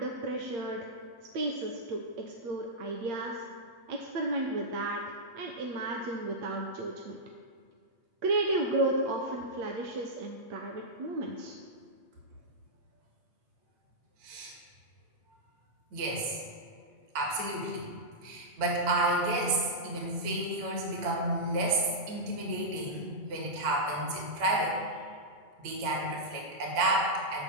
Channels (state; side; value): late; left; 8.8 ms